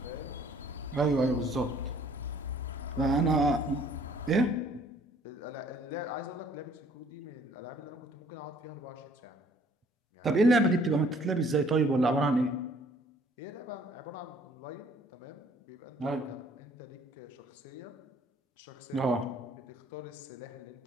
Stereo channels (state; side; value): normal; both; correlation 0.59